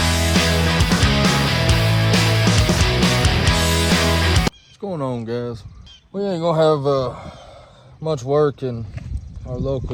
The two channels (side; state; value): both; identical; correlation 1.00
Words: going on, guys? We ain't gonna have much work in our